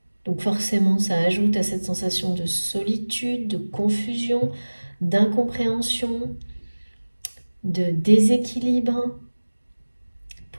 Donc forcément, ça ajoute à cette sensation de solitude, de confusion, d'incompréhension, de déséquilibre.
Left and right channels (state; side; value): inverted; both; correlation -1.00